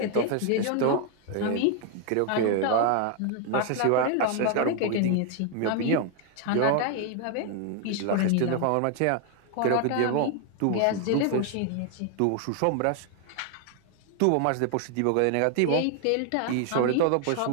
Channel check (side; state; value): both; different; correlation 0.00